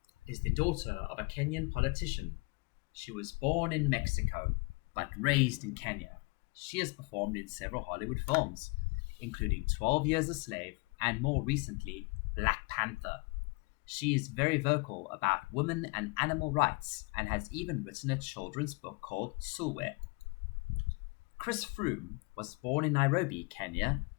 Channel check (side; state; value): right; quieter; 29.5 dB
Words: is the daughter of a Kenyan politician. She was born in Mexico, but raised in Kenya. She has performed in several Hollywood films, including 12 Years a Slave and more recently, Black Panther. She is very vocal about women and animal rights and has even written a children's book called Sulwe. Chris Froome was born in Nairobi, Kenya,